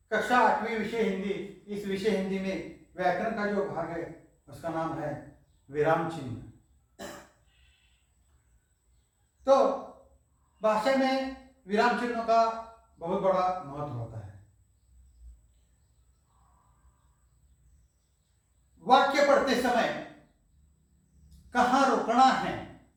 कक्षा 8वीं विषय हिंदी, इस विषय हिंदी में व्याकरण का जो भाग है उसका नाम है विराम चिन्ह। तो भाषा में विराम चिन्हों का बहुत बड़ा महत्व होता है। वाक्य पढ़ते समय कहाँ रुकना है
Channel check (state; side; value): identical; both; correlation 1.00